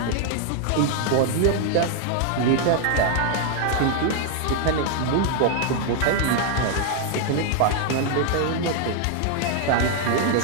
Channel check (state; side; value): different; both; correlation 0.00